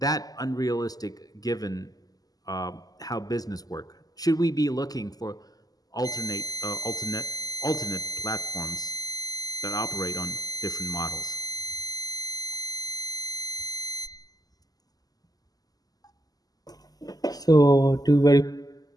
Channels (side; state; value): right; late; 0.18 ms